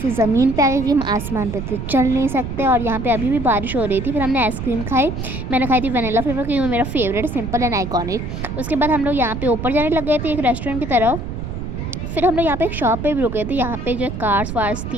ज़मीन पे आ गए कि हम आसमान पे तो चल नहीं सकते, और यहाँ पे अभी भी बारिश हो रही थी। फिर हमने आइसक्रीम खाई, मैंने खाई थी वनीला फ्लेवर क्योंकि वो मेरा फेवरेट, सिंपल एंड आइकॉनिक। उसके बाद हम लोग यहाँ पे ऊपर जाने लग गए थे एक रेस्टोरेंट की तरफ। फिर हम लोग यहाँ पे एक शॉप पे भी रुके थे, यहाँ पे जो कार्स वार्स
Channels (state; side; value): noise; right; rumble, 6 dB below the sound